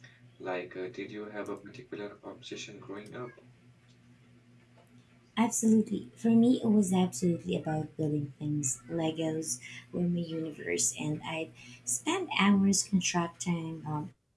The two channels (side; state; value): both; identical; correlation 1.00